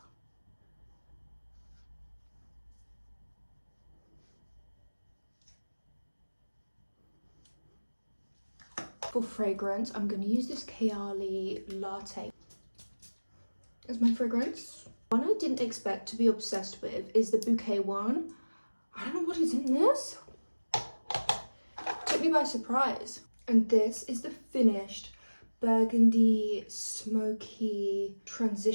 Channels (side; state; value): both; inverted; correlation -1.00